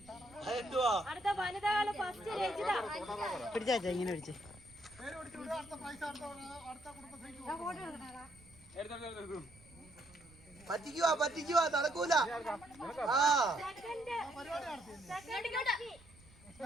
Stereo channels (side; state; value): right; noise; rumble, 24 dB below the sound